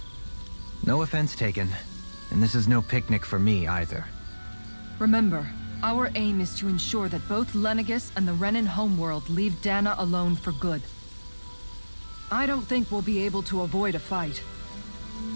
No offense taken, and this is no picnic for me either. Remember, our aim is to ensure that both Lenegis and the Renan homeworld leave Dana alone for good. I don't think we'll be able to avoid a fight.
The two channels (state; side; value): inverted; both; correlation -1.00